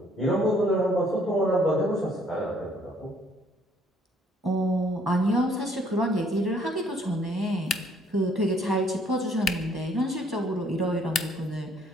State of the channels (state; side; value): normal; both; correlation 0.63